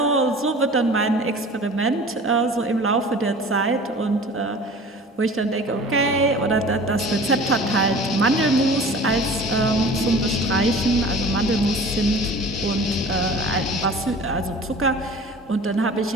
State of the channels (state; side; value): normal; both; correlation 0.43